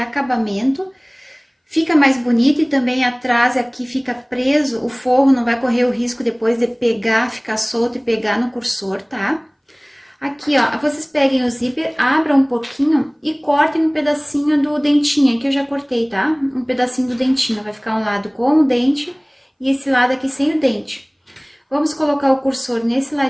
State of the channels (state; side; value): identical; both; correlation 1.00